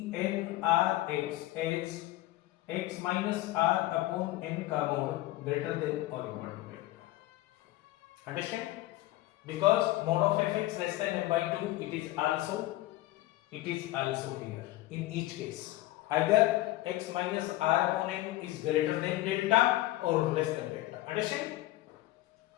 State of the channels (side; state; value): right; quieter; 17.0 dB